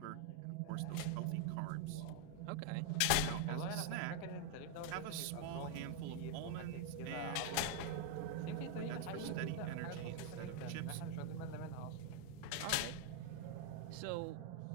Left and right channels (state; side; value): different; both; correlation 0.00